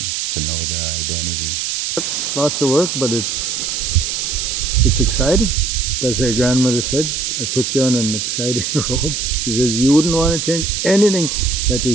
to know their identity. Lots of work, but it's exciting. As her grandmother said, I put you on an exciting road. She says, you wouldn't want to change anything that we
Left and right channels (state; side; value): noise; right; hiss, 2 dB below the sound